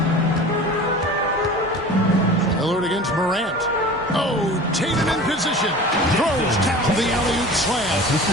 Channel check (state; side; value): normal; both; correlation 0.39